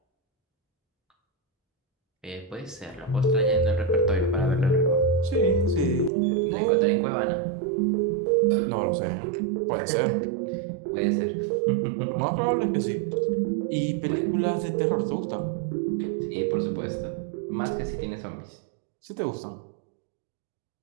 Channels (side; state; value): left; drops out; at 6.1 s